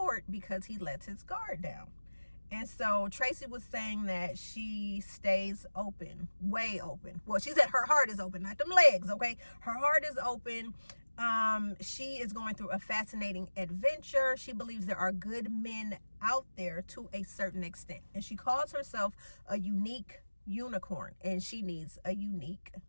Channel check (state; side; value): inverted; both; correlation -1.00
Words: because he lets his guard down. And so Tracee was saying that she stays open, way open. Well, she said her heart is open, not them legs, okay? Her heart is open. She is going through a fascinating adventure. She believes there are good men out there to a certain extent. And she calls herself a unique unicorn. And she needs a unique,